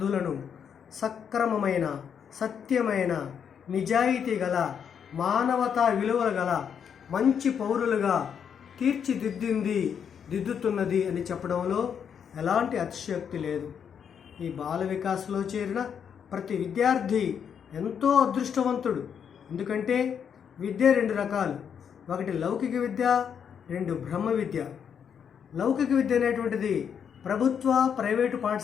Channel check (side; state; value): right; quieter; 7.7 dB